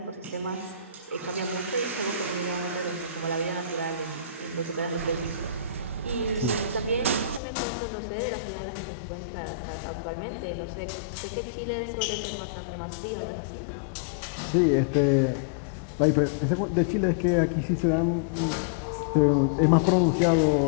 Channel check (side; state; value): right; drops out; at 7.4 s